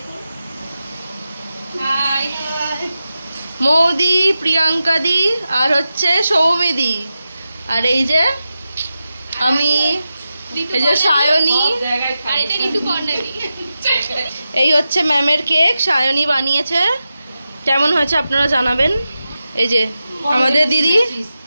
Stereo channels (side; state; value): both; inverted; correlation -0.92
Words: হাই মৌদি, প্রিয়াঙ্কা দি আর হচ্ছে সৌমিদি, আর এই যে আমি, এই যে সায়নী, আর এটা ঋতুপর্ণা দি। এই হচ্ছে ম্যামের কেক, সায়নী বানিয়েছে। কেমন হয়েছে আপনারা জানাবেন। এই যে আমাদের দিদি,